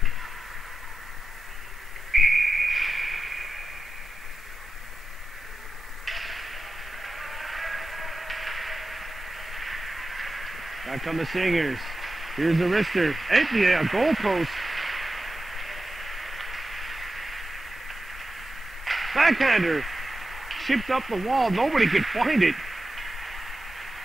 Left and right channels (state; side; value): normal; both; correlation 0.92